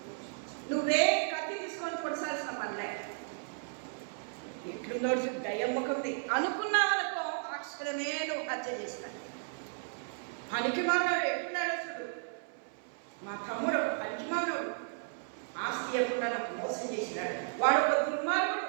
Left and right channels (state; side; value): silent; left; 55 dB below the other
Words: నువ్వే కత్తి తీసుకొని పొడసాల్సిన పనిలే. ఎట్లుందో దయ్యమ్మకుంది అనుకున్నావనుకో, అక్షరమే నువ్వు హత్య చేస్తాను. పనికి మానవుడు ఎప్పుడున్నాడో చూడు. మా తమ్ముడు ఒక పనికి మానవుడు, ఆస్తి ఎప్పుడు నాకు మోసం చేసినాడు. వాడు ఒక దుర్మార్గుడు,